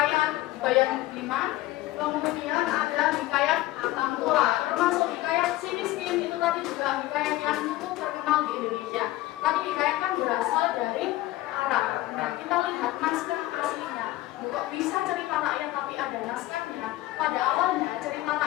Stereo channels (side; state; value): right; quieter; 17.0 dB